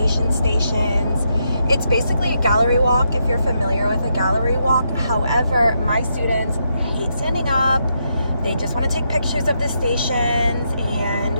stations. It's basically a gallery walk if you're familiar with a gallery walk. However, my students hate standing up. They just want to take pictures of the stations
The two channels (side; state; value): both; inverted; correlation -0.81